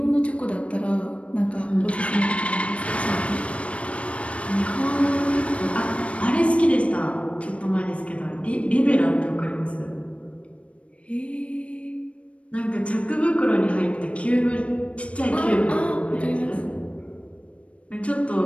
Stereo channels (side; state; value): right; late; 0.062 ms